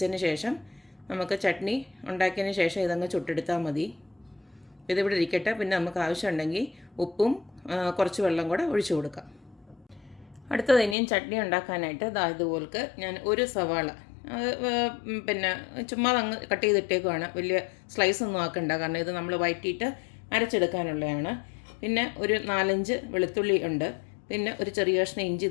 ശേഷം നമുക്ക് ചട്നി ഉണ്ടാക്കിയതിന് ശേഷം ഇതങ്ങ് ചുട്ടെടുത്താൽ മതി. ഇതിവിടെ ഇരിക്കട്ടെ. പിന്നെ നമുക്ക് ആവശ്യമുണ്ടെങ്കിൽ ഉപ്പും കുറച്ച് വെള്ളം കൂടെ ഒഴിച്ചു കൊടുക്കാം. അടുത്തത് ഇനിയും ചട്നി ഉണ്ടാക്കാനായിട്ട് ഇതുപോൾക്ക് ഞാൻ ഒരു സവാള പിന്നെ ചുമ്മാ അങ്ങ് കട്ട് ചെയ്തിട്ടേക്കുവാണ്. വലിയ സ്ലൈസ് ഒന്നും ആക്കണ്ട, കാരണം ഇത് നമ്മൾ വഴറ്റിയിട്ട് അരച്ചെടുക്കാനുള്ളതാണ്. പിന്നെ ഒരു 4-5 വെളുത്തുള്ളി ഉണ്ട്. പിന്നെ ഒരു ചെറിയ കഷ്ണം ഇഞ്ചി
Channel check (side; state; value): right; drops out; at 11.0 s